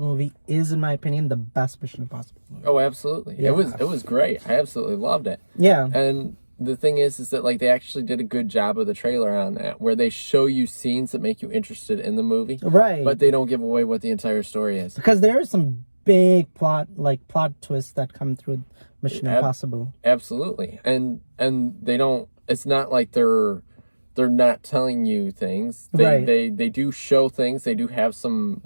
movie is, in my opinion, the best Mission Impossible movie. Oh, absolutely. Yeah. It was great. I absolutely loved it. Yeah. And the thing is that like they actually did a good job of the trailer on that, where they show you scenes that make you interested in the movie, Right. but they don't give away what the entire story is. Because there are some big plot twists that come through Mission Impossible. Absolutely. And they don't. It's not like they're not telling you things. Right. They do show things. They do have some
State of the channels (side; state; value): both; inverted; correlation -1.00